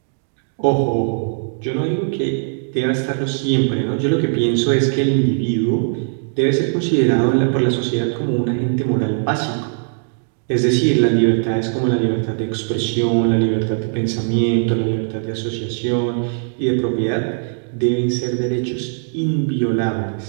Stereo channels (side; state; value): left; silent; digital silence